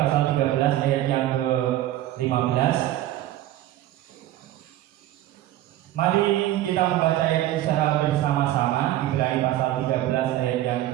13 ayat yang ke-15. Mari kita membaca ayat secara bersama-sama. Ibrani pasal 13 ayat yang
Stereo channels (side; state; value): left; quieter; 14.2 dB